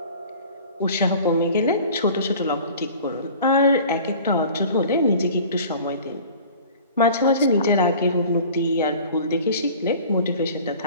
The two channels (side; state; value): both; inverted; correlation -0.45